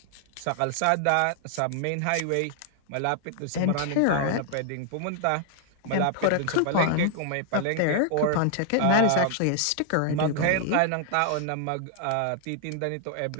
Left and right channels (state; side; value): different; both; correlation 0.00